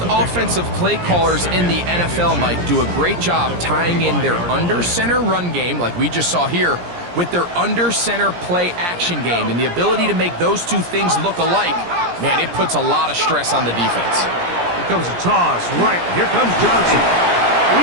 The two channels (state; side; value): late; left; 17 ms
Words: offensive play callers in the NFL, Mike, do a great job tying in their under-center run game, like we just saw here, with their under-center play action game. And the ability to make those two things look alike, man, it puts a lot of stress on the defense. Here comes a toss. Right, here comes Johnson.